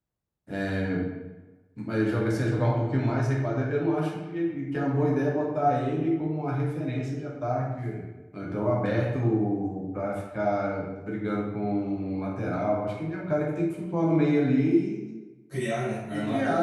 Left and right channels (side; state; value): both; identical; correlation 1.00